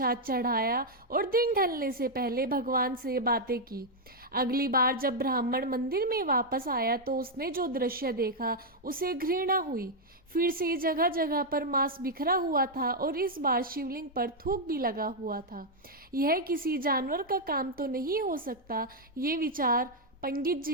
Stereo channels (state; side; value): normal; both; correlation -0.01